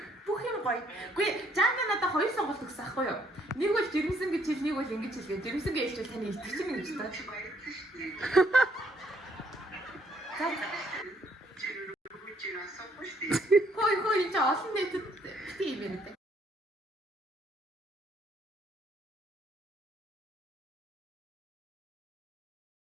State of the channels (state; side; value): normal; both; correlation 0.68